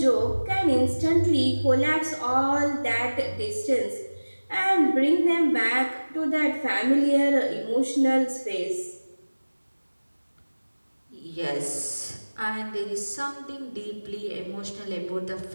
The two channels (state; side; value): inverted; both; correlation -1.00